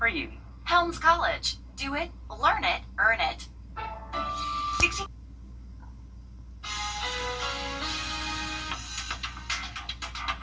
for you. Helms College. Do it, learn it, earn it. 60.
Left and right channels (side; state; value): both; identical; correlation 1.00